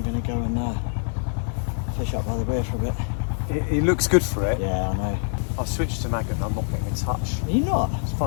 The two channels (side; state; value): right; silent; digital silence